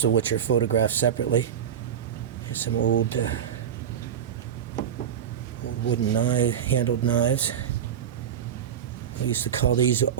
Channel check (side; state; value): left; quieter; 8.8 dB